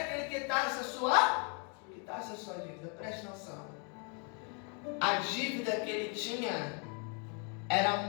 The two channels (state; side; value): quieter; right; 37.2 dB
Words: que ele quitasse a sua dívida. Preste atenção. A dívida que ele tinha era